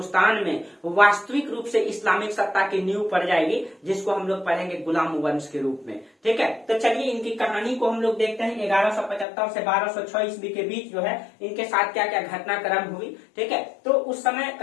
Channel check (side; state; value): right; drops out; at 9.2 s